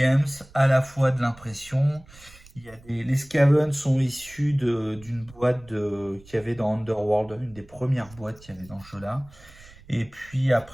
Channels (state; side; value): noise; right; rumble, 23 dB below the sound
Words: à la fois de l'impression. Il y a les Scaven sont issus d'une boîte qu'il y avait dans Underworld, une des premières boîtes qu'il y avait dans ce jeu-là. Et puis